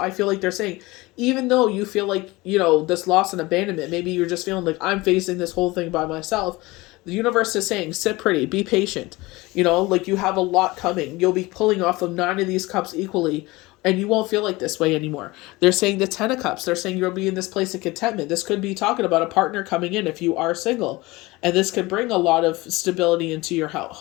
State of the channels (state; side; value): quieter; right; 21.5 dB